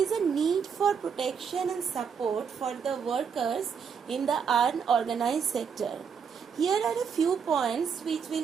a need for protection and support for the workers in the unorganized sector. Here are a few points which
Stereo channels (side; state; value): left; quieter; 6.7 dB